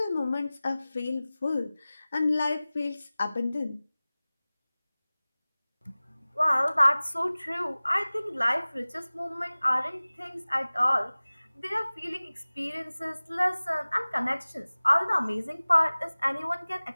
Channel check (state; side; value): inverted; both; correlation -0.99